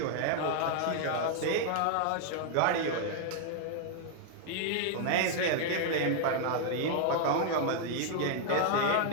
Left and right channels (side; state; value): both; different; correlation 0.00